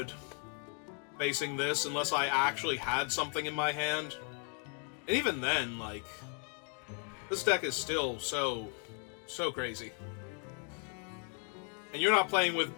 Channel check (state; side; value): quieter; right; 38.2 dB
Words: Facing this, unless I actually had something in my hand. And even then, like, this deck is still so crazy. And you're not playing with,